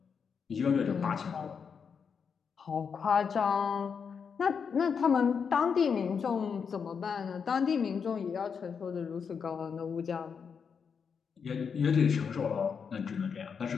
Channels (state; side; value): quieter; right; 6.3 dB